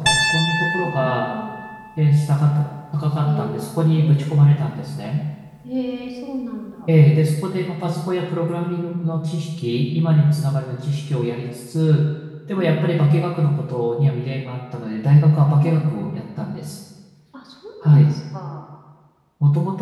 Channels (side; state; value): both; identical; correlation 1.00